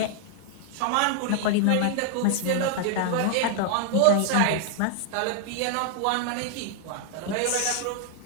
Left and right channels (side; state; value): both; different; correlation 0.00